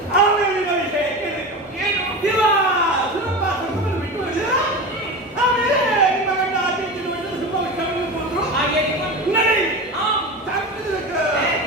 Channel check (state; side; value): normal; both; correlation 0.26